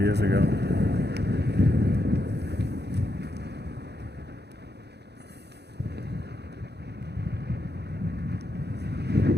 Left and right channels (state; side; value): late; left; 0.48 ms